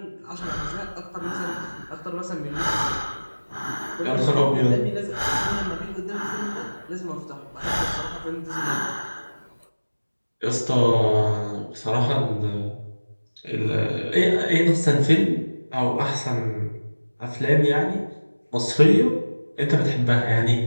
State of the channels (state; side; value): inverted; both; correlation -1.00